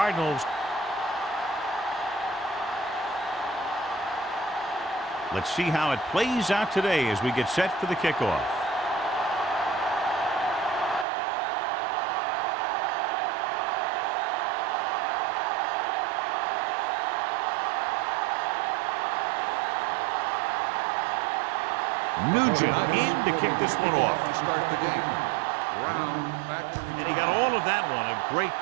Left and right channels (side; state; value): left; drops out; at 11.1 s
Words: Let's see how it plays out today as we get set for the kickoff. Nugent in to kick this one off. To start the game. And he got all of that one. A great